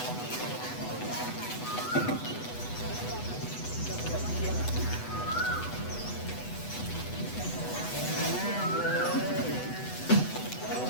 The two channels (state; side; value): late; right; 8.1 ms